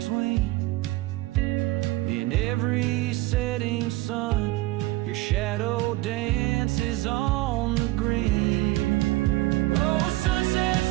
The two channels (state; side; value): quieter; left; 19.3 dB